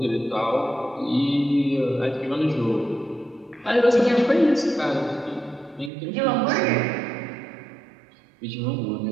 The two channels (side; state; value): left; drops out; at 5.9 s